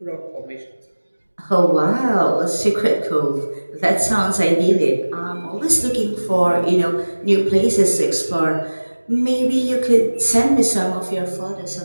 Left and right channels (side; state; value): both; inverted; correlation -1.00